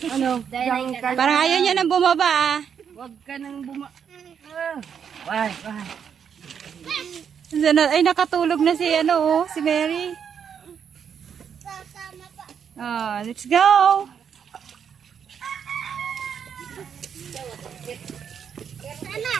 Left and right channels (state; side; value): quieter; left; 7.6 dB